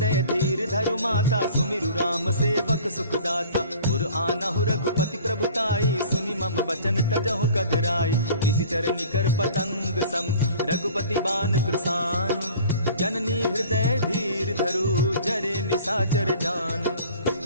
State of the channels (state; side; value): inverted; both; correlation -0.46